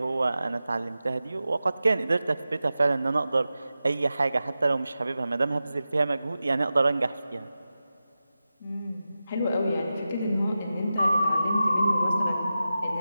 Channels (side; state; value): both; inverted; correlation -0.93